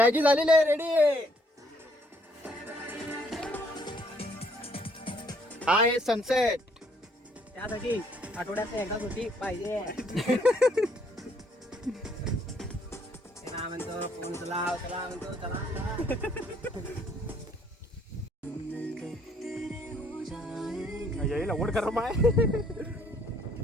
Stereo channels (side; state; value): both; normal; correlation 0.66